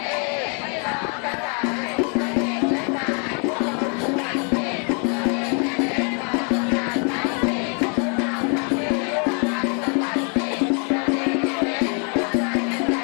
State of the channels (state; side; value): quieter; right; 38.5 dB